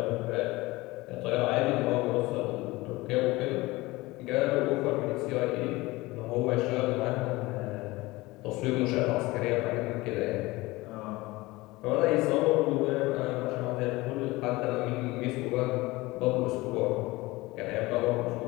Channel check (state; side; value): quieter; right; 20.9 dB